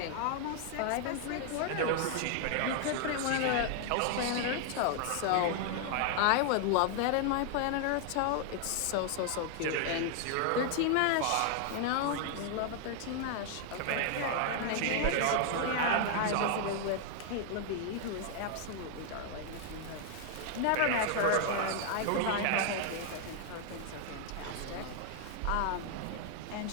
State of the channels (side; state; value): both; different; correlation 0.00